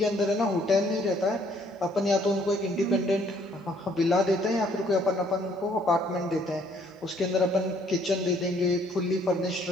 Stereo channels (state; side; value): normal; both; correlation 0.63